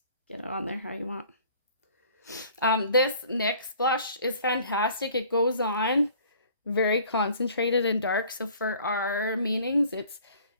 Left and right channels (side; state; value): both; inverted; correlation -0.52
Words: get it on there how you want. This NYX blush is fantastic. It goes on very concentrated and dark. So for our meanings, it's